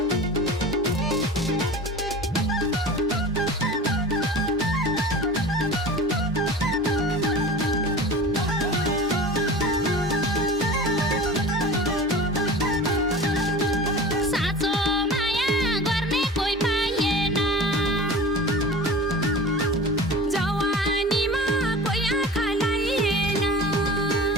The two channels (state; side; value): normal; both; correlation 0.36